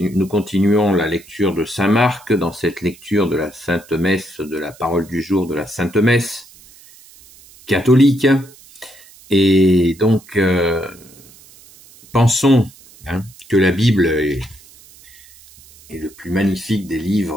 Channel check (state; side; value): noise; right; hiss, 24 dB below the sound